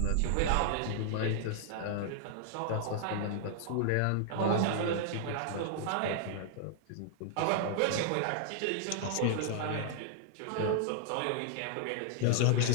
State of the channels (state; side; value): different; both; correlation -0.01